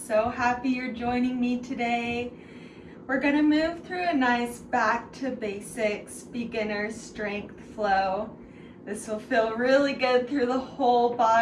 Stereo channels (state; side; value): identical; both; correlation 1.00